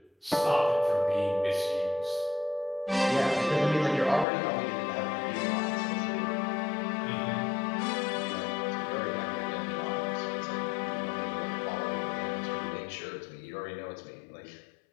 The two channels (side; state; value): right; drops out; at 4.2 s